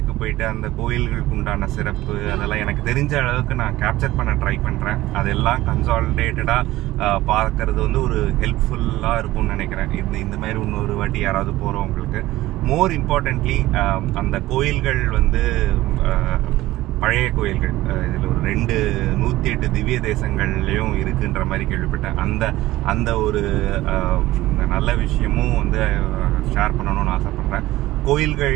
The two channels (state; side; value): quieter; left; 16.9 dB